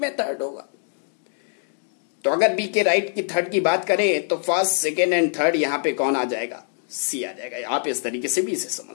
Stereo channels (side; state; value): right; silent; digital silence